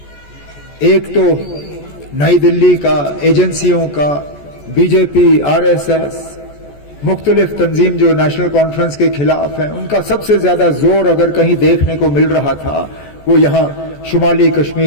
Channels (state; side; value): late; right; 14 ms